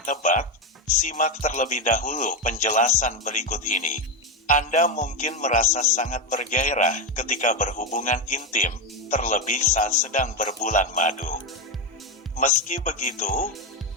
simak terlebih dahulu penjelasan berikut ini. Anda mungkin merasa sangat bergairah ketika berhubungan intim, terlebih saat sedang berbulan madu. Meski begitu,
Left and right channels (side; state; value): both; normal; correlation 0.10